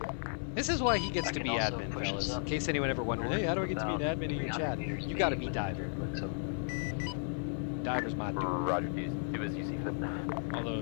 This is why he gets to be admin, fellas. In case anyone ever wondered, hey, how do I get to be an admin in your chat? You gotta be Diver. Diver's my dude. Roger, do as you see fit. Although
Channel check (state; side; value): silent; right; 55 dB below the other